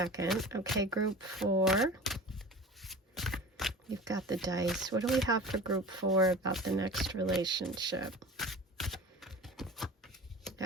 Okay, group 4. You've got the dice. What do we have for group 4 about the next relationship?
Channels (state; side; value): normal; both; correlation 0.37